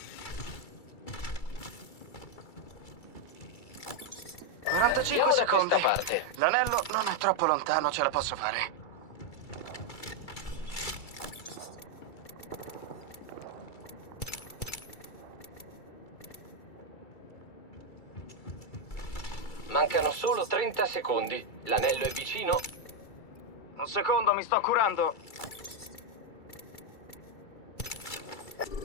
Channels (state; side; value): late; right; 2.3 ms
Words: Andiamo 45 da secondi. questa parte. L'anello non è troppo lontano, ce la posso fare. Mancano solo 30 secondi. L'anello è vicino. Un secondo, mi sto curando.